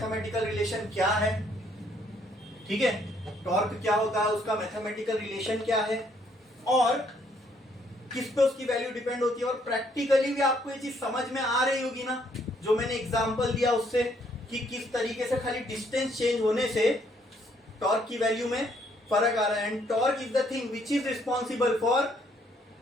रिलेशन क्या है, ठीक है। टॉर्क क्या होता है, उसका मैथमेटिकल रिलेशन क्या है, और किस पे उसकी वैल्यू डिपेंड होती है, और प्रैक्टिकली भी आपको ये चीज समझ में आ रही होगी ना, जो मैंने एग्जांपल दिया उससे, कि किस तरीके से खाली डिस्टेंस चेंज होने से टॉर्क की वैल्यू में फर्क आ रहा है। And torque is the thing which is responsible for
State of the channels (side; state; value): both; normal; correlation 0.68